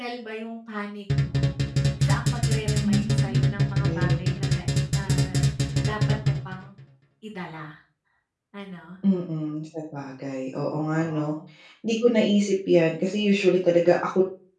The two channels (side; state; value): both; identical; correlation 1.00